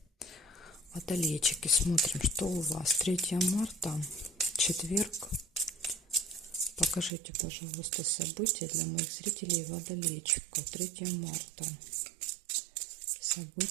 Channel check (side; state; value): left; drops out; at 7.1 s